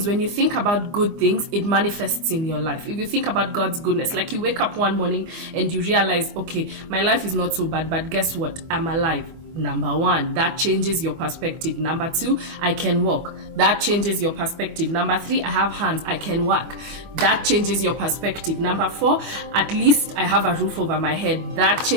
when you think about good things, it manifests in your life. If you think about God's goodness, like you wake up one morning and you realize, okay, my life is not so bad, but guess what? I'm alive. Number one, that changes your perspective. Number two, I can walk. That changes your perspective. Number three, I have hands. I can work. That changes your perspective. Number four, at least I have a roof over my head. That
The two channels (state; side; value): late; left; 24 ms